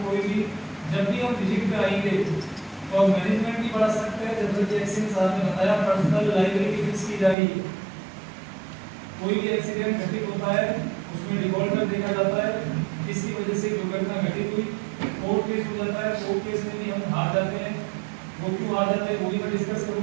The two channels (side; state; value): left; drops out; at 7.4 s